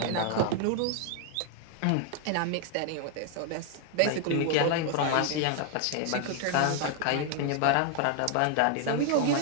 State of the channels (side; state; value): both; different; correlation 0.00